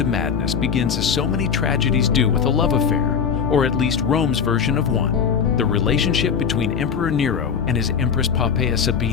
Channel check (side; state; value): right; quieter; 6.8 dB